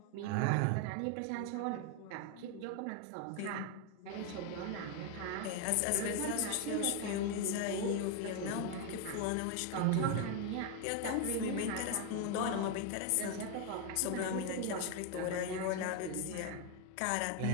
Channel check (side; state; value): both; different; correlation 0.01